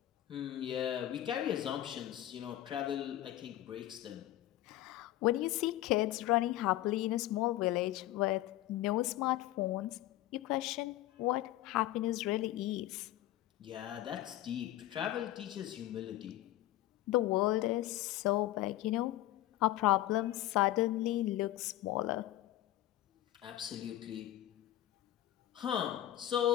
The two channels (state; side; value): quieter; right; 14.5 dB